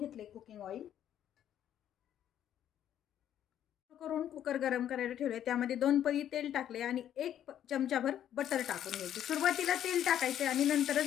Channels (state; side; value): quieter; right; 10.6 dB